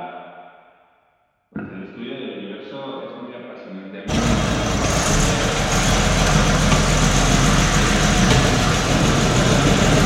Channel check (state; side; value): identical; both; correlation 1.00